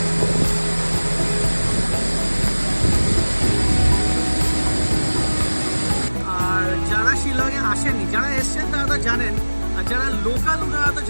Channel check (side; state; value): both; inverted; correlation -1.00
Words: আর যারা শিলংয়ে আসেনি, যারা এসছেন তারা তো জানেন, আর যারা লোকাল ওনারা তো